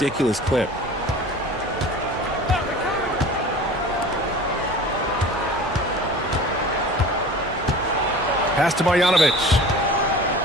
clip. Pass to Marjanovic.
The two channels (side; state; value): both; normal; correlation 0.39